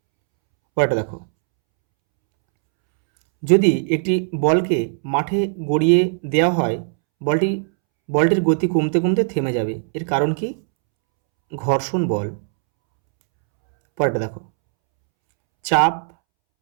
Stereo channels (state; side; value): silent; left; 66 dB below the other